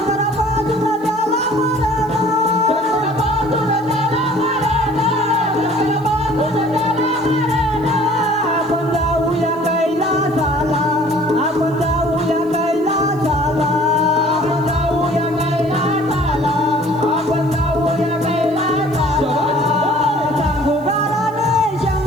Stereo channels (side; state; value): right; noise; hiss, 29 dB below the sound